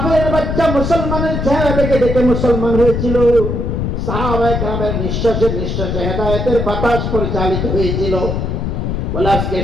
বাচ্চা মুসলমানের চেহারা দেখে দেখে মুসলমান হয়েছিল, সাহাবায়ে কেরামের নিঃশ্বাসে নিঃশ্বাসে হেদায়েতের বাতাস পরিচালিত হয়েছিল। বলে আজকে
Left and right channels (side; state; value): left; noise; rumble, 1 dB below the sound